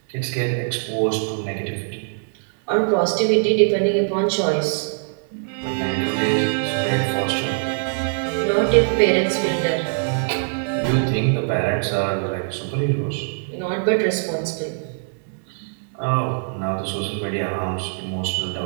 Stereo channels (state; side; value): silent; left; 63 dB below the other